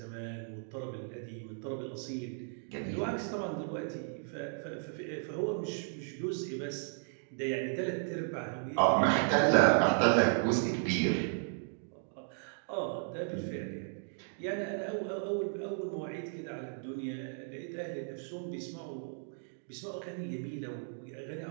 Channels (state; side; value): silent; left; digital silence